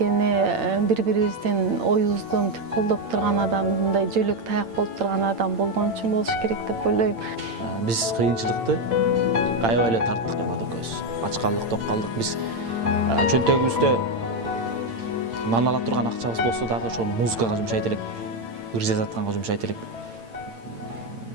бири-бирибиздин оюбузду мынтип колдоп турган адам, мындай жөлөк таяк болуп турган адам болгон үчүн болуш керек деп ойлойм. Биз кыйынчылыкты аябай эле тарттык Эллада экөөбүз. Ач калдык, ток калдык. Биз чөнтөгүбүздө нан ала турган акчабыз болсо дагы ошону музыкага жумшайт элек, ыр жазатканга жумшайт элек.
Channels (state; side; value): late; left; 8.8 ms